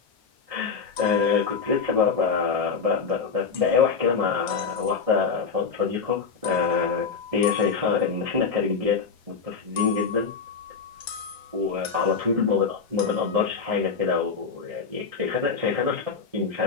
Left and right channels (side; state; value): right; quieter; 5.4 dB